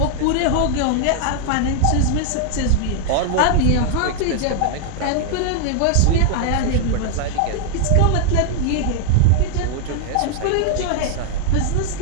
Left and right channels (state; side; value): different; both; correlation 0.00